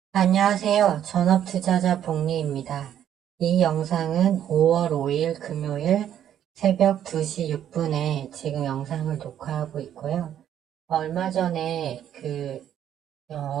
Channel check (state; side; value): quieter; left; 10.3 dB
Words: 안녕하세요. 전업투자자 복리입니다. 이 영상은 5월 5일 금요일 새벽 2시 6분에 지금 영상을 녹화하고 있고요. 얼마 전에